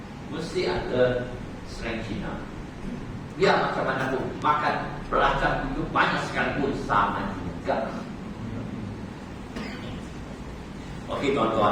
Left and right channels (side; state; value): both; identical; correlation 1.00